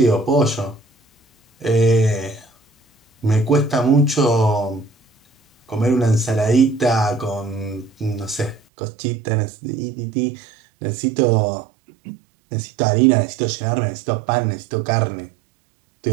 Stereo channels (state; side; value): drops out; left; at 8.6 s